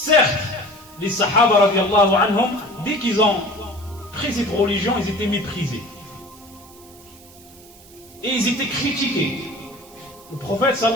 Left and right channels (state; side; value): noise; right; hiss, 23 dB below the sound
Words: les Sahaba radiallahu anhum, dès qu'ils ont pris cette religion, ils étaient méprisés. Et ils étaient critiqués. Le prophète